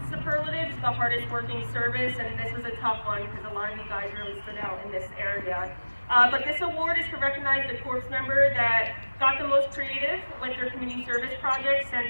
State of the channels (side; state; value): both; inverted; correlation -1.00